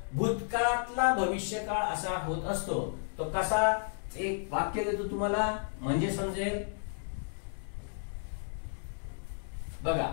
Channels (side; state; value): right; silent; digital silence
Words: भूतकाळातला भविष्यकाळ असा होत असतो. तो कसा, एक वाक्य देतो तुम्हाला म्हणजे समजेल. बघा